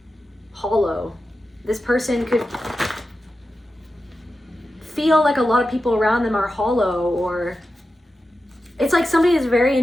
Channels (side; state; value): both; normal; correlation 0.91